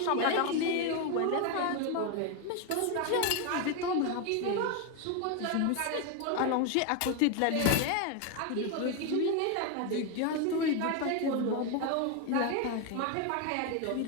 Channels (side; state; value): both; different; correlation 0.01